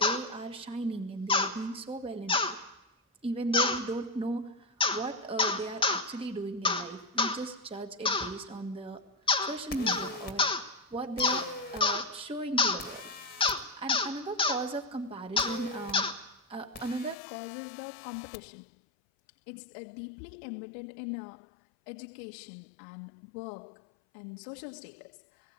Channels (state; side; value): drops out; right; at 17.2 s